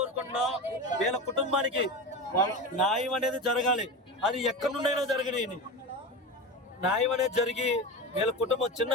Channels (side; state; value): both; normal; correlation 0.25